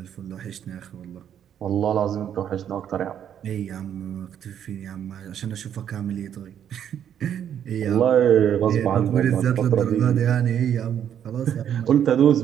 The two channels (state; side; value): quieter; left; 9.4 dB